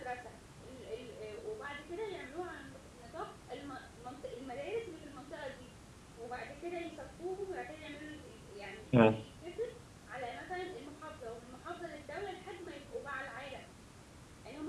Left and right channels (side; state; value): both; identical; correlation 1.00